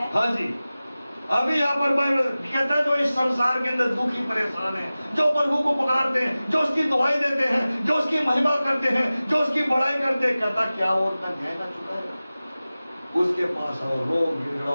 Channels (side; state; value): both; inverted; correlation -0.97